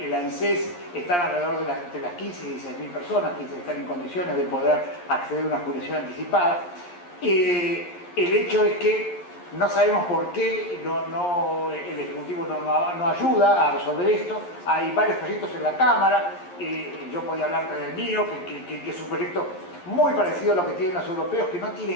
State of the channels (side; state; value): right; late; 11 ms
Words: ANSES están alrededor de las 15 y 16 mil personas que están en condiciones de poder acceder a una jubilación anticipada. El hecho es que no sabemos por qué el Ejecutivo no ayuda a resolver esto. Hay varios proyectos en la Cámara. Yo podía hablar del mío, que es un proyecto muy parecido a lo que tienen los europeos, que no